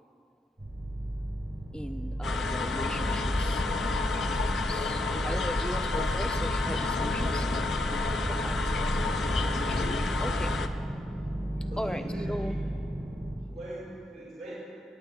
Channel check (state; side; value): normal; both; correlation 0.80